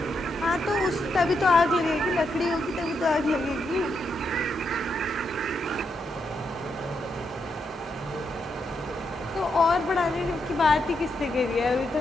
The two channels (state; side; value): normal; both; correlation 0.81